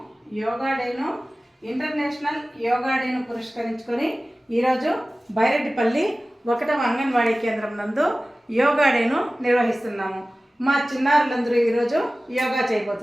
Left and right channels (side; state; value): both; normal; correlation 0.97